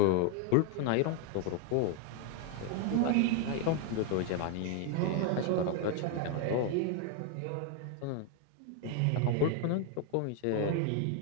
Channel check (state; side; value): different; both; correlation 0.01